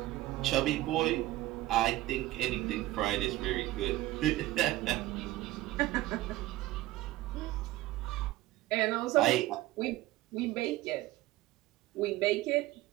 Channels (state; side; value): quieter; left; 16.9 dB